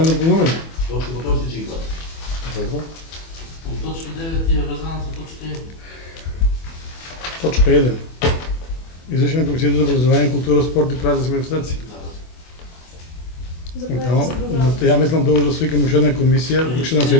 допълнение. Точка по точка ќе ги гледате. Добро. От точка 9 е връзана с точка 1. Точка 1. Извършване на Комисията за образование, култура, спорт и празници манифестации. Я мислам добро да свикам уште една комисија, уште една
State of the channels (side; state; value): right; late; 24 ms